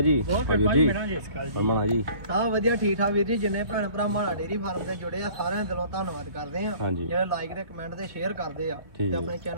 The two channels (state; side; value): late; left; 2.8 ms